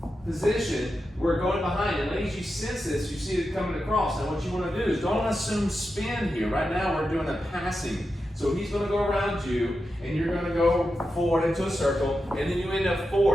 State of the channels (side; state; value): both; normal; correlation 0.89